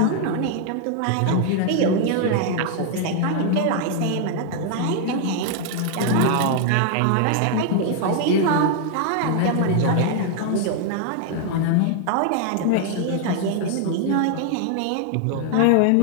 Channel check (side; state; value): both; different; correlation 0.00